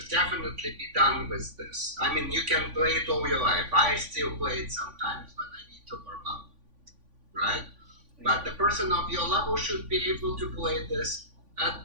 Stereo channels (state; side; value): late; left; 3.5 ms